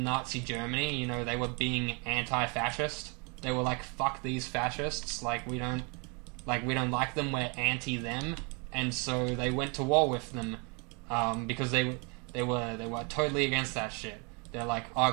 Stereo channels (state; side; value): quieter; left; 32.6 dB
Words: Nazi Germany, they were being anti-fascist. They were like, fuck these fascists, we don't like them, we're anti them, and so they went to war with them because they were totally against that shit. They're like,